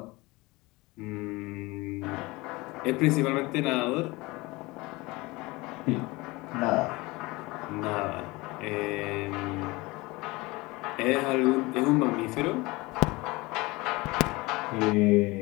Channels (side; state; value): right; quieter; 22.7 dB